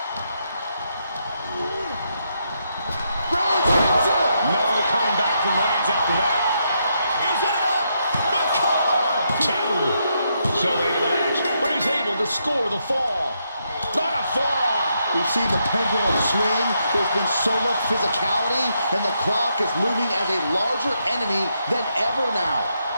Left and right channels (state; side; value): inverted; both; correlation -0.79